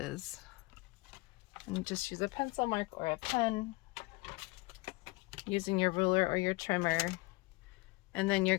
And just use a pencil mark or a pen, using your ruler or your trimmer. And then you're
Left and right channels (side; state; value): right; quieter; 24.8 dB